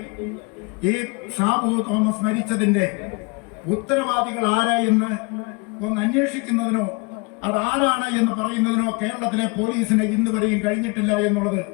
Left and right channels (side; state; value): right; quieter; 29.2 dB